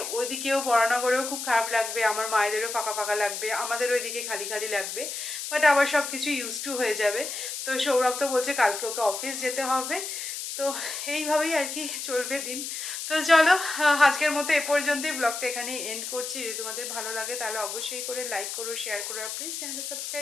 ওইদিকেও বড়নগরেও খুব খারাপ লাগবে, আমার মায়েদেরও ফাঁকা ফাঁকা লাগবে, আমাদের ওইদিকে খালি খালি লাগবে। বাট আবার সব কিছু ইউজ টু হয়ে যাবে। তো সৌরভ তো বলছে কালকে ওকে অফিস যেতে হবে, তো এইভাবেই আর কি চলবে দিন। তো চলো, আজকের মতো এ পর্যন্তই, ব্লগটা এখানেই এন্ড করছি। যদি তোমাদের ভালো লাগে তাহলে অবশ্যই করে লাইক করো, শেয়ার করো, আর প্লিজ চ্যানেলটা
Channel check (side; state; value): left; noise; hiss, 6 dB below the sound